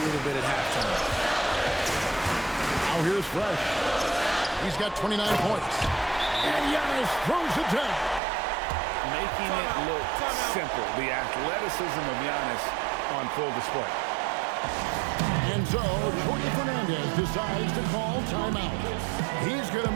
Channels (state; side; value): drops out; left; at 8.2 s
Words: little bit at halftime. Now here's Fresh. He's got 29 points. And Giannis throws it down. Making it look simple. The athleticism of Giannis on full display. And so Jorge Fernandez decides to call timeout. He's going to